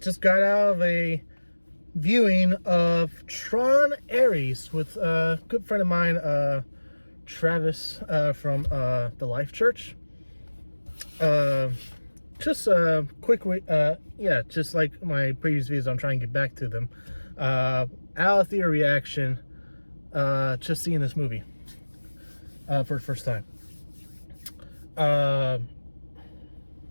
got out of a viewing of Tron Ares with a good friend of mine, Travis from the Life Church. Just a quick, just like my previous videos, I'm trying to get back to them. Out of theater reaction. Just seeing this movie for the first time. And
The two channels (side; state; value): both; inverted; correlation -1.00